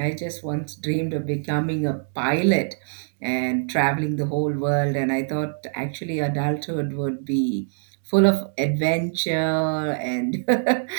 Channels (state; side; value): silent; left; digital silence